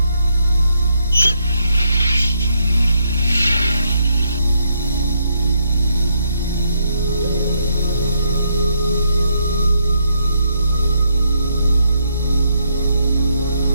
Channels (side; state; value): both; inverted; correlation -0.76